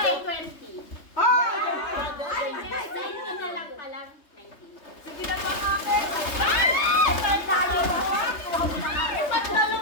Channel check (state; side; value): late; right; 3.3 ms